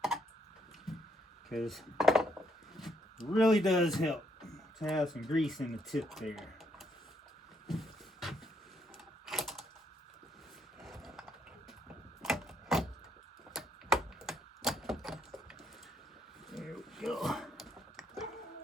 Because it really does help to have some grease in the tip there. There we go.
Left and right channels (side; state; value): both; normal; correlation 0.73